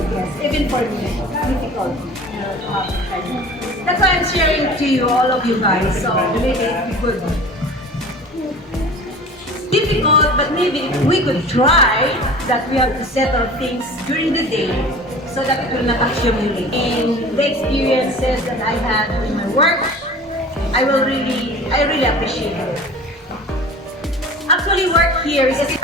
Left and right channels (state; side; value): normal; both; correlation 0.40